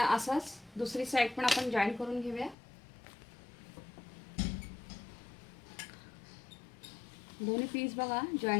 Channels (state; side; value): drops out; right; at 2.6 s